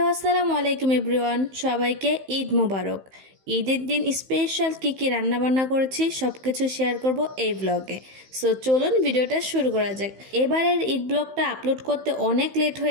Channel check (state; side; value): late; left; 15 ms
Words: আসসালামু আলাইকুম everyone, সবাইকে ঈদ মোবারক। ঈদের দিন স্পেশাল কী রান্নাবান্না করেছি সব কিছু শেয়ার করব এই ব্লগে। সো চলুন ভিডিওটা শুরু করা যাক। এবারের ঈদ ব্লগটা আপলোড করতে অনেক লেট